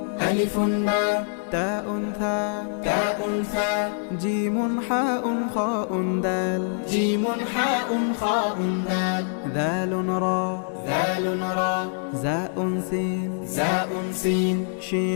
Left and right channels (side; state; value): right; silent; 59 dB below the other